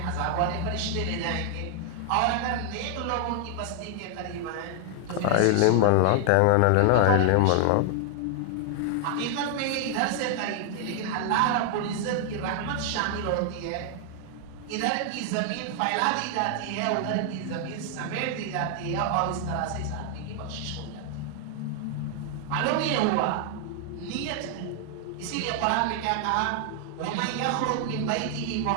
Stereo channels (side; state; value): both; different; correlation 0.00